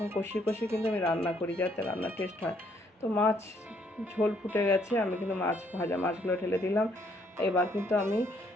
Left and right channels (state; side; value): normal; both; correlation 0.69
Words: কষিয়ে কষিয়ে কিন্তু আমি রান্না করি, যাতে রান্নার টেস্ট হয়। তো মাছ ঝোল ফুটে গেছে, আমি কিন্তু ভাজা মাছগুলো ঢেলে দিলাম। এবার কিন্তু আমি